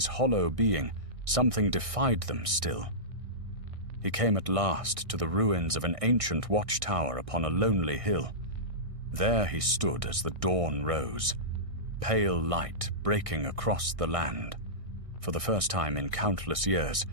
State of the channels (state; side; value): late; left; 1.6 ms